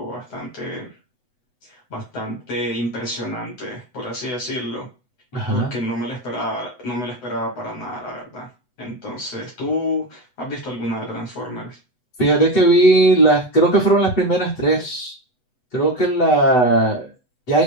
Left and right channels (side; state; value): right; late; 8.0 ms